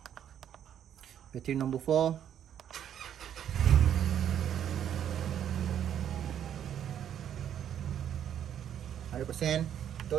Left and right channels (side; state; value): left; quieter; 9.7 dB